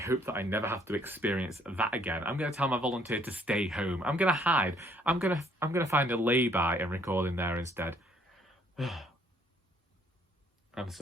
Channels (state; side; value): normal; both; correlation 0.65